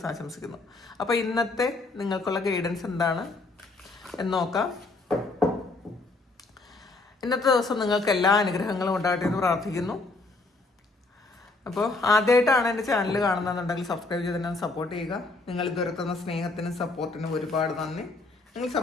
ആശംസിക്കുന്നു. അപ്പോൾ ഇന്നത്തെ നിങ്ങൾക്കുള്ള ഗൈഡൻസ് എന്താണ് എന്ന് നോക്കാം. ഇന്നത്തെ ദിവസം നിങ്ങൾക്ക് എല്ലാ അനുഗ്രഹങ്ങളും ഉണ്ടാകട്ടെ എന്ന് പ്രാർത്ഥിക്കുന്നു. അപ്പോൾ ആദ്യമായിട്ടാണ് എൻ്റെ ചാനൽ കാണുന്നതെന്നുണ്ടെങ്കിൽ സബ്സ്ക്രൈബ് ചെയ്ത് തന്നെ സപ്പോർട്ട് ചെയ്യുക. നിങ്ങൾ ഇതുവരെ തന്ന സ്നേഹത്തിനും സപ്പോർട്ടിനും ഒരുപാട് നന്ദി. നിങ്ങൾ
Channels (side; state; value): right; quieter; 3.4 dB